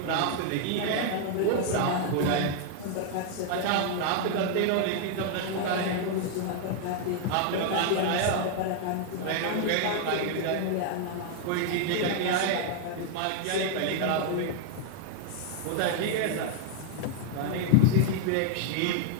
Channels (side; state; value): both; different; correlation 0.00